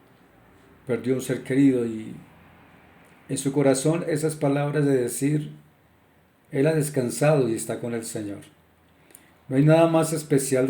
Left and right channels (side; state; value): both; identical; correlation 1.00